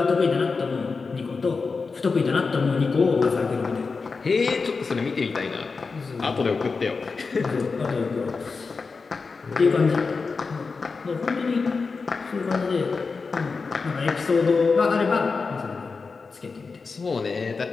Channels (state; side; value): quieter; right; 4.6 dB